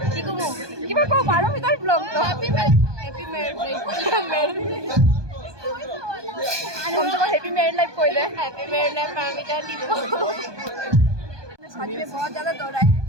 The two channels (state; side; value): late; left; 1.2 ms